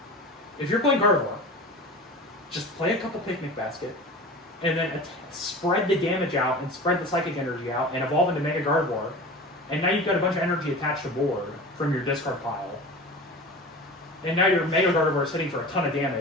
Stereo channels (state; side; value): normal; both; correlation 0.35